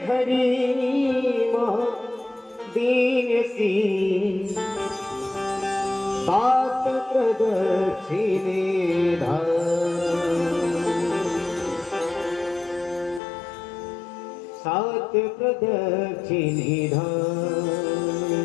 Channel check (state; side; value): drops out; right; at 13.2 s